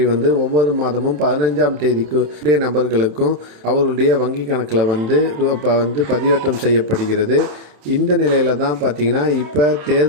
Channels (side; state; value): left; late; 27 ms